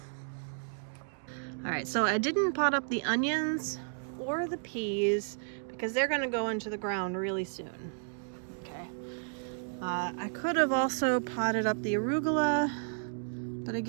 All right, so I didn't pot up the onions or the peas because they're gonna go into the ground really soon. Okay. I could have also potted up the arugula, but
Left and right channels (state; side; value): silent; left; digital silence